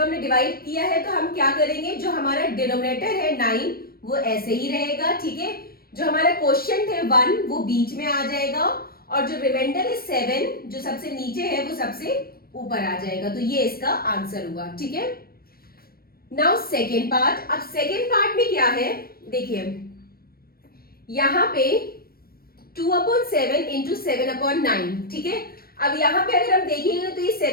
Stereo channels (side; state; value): right; late; 0.44 ms